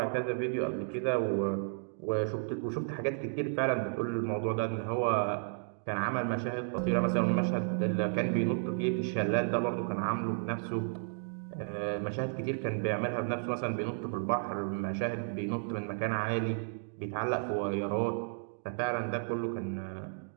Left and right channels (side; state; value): left; silent; digital silence